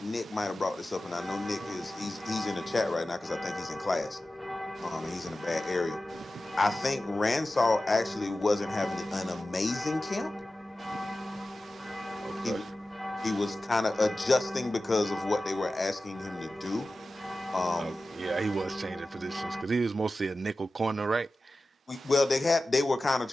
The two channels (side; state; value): both; normal; correlation 0.95